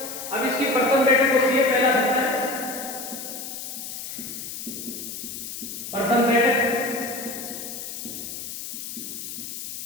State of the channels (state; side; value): noise; left; hiss, 8 dB below the sound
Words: अब इसकी प्रथम बैठक होती है पहला सत्र। प्रथम बैठक